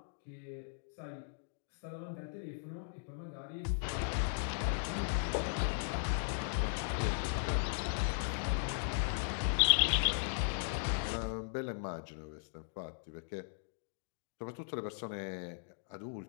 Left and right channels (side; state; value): right; silent; digital silence